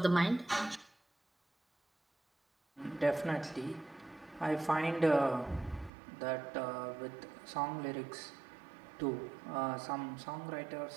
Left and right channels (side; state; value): left; drops out; at 5.9 s